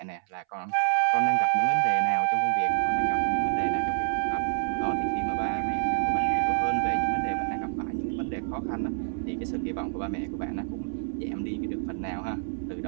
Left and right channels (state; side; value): silent; left; 60 dB below the other